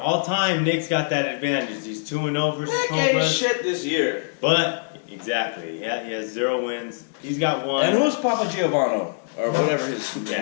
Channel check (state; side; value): silent; right; digital silence